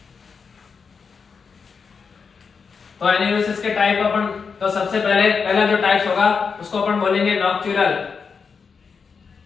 तो एन्यूरेसिस के टाइप अपन, तो सबसे पहला जो टाइप्स होगा उसको अपन बोलेंगे नॉक्चुरल।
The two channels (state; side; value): quieter; right; 5.6 dB